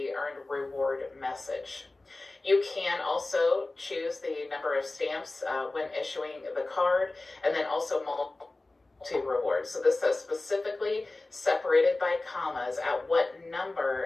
earned reward message. You can also choose the number of stamps when issuing the card, and then also multi-rewards. So this says specifically separated by commas at what number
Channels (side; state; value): right; quieter; 3.0 dB